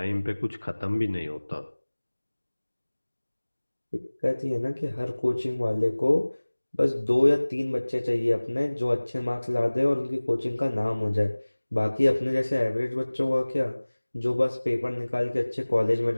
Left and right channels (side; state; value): both; inverted; correlation -1.00